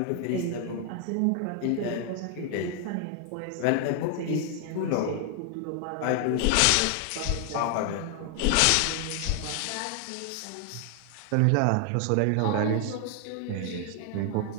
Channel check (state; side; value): different; both; correlation 0.00